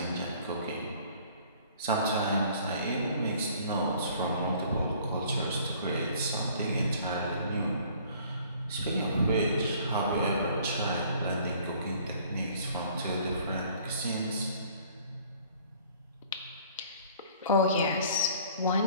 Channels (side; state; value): both; inverted; correlation -0.55